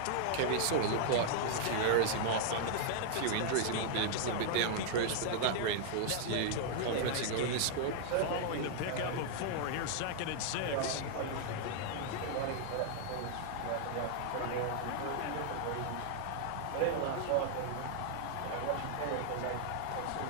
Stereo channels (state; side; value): different; both; correlation -0.01